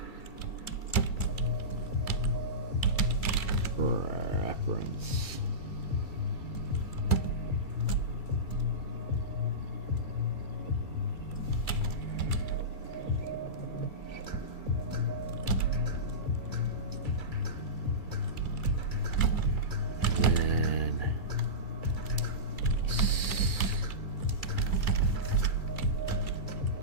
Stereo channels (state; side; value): late; right; 2.3 ms